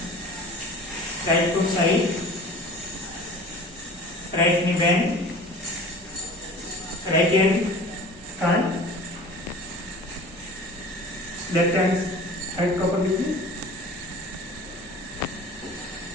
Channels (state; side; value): normal; both; correlation 0.41